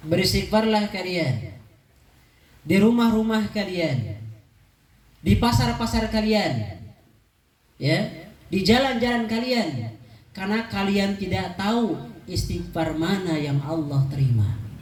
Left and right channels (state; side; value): identical; both; correlation 1.00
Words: beristighfarlah kalian di rumah-rumah kalian, di pasar-pasar kalian, ya, di jalan-jalan kalian, karena kalian tidak tahu istighfar mana yang Allah terima.